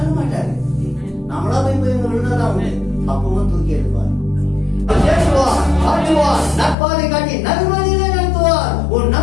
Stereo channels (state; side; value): drops out; right; at 6.8 s